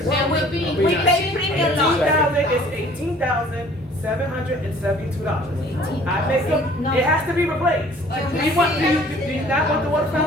That would be. We pay premium lot. It's $18,772. I make it has to be replaced. Do you not want the water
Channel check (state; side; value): normal; both; correlation 0.53